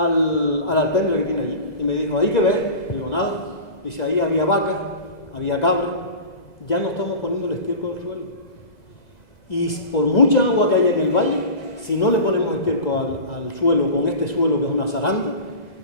alpendre que tiene allí y me dijo, ¿ahí qué ves? Digo, nada. Dice, ahí había vacas, había cabras, ya no estamos poniendo el estiércol al suelo. Y por mucha agua que haya en el valle, si no le ponemos estiércol al suelo, con este suelo que es una zaranda,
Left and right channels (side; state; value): right; late; 2.0 ms